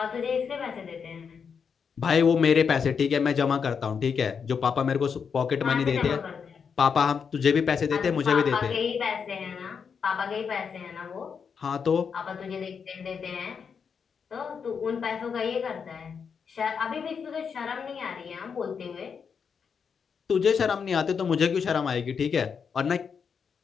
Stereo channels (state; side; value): quieter; right; 6.4 dB